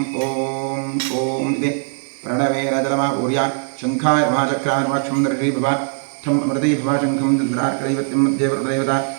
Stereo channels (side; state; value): left; silent; digital silence